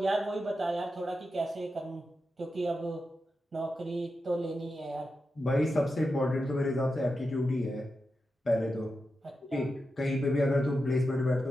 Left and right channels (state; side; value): normal; both; correlation 0.89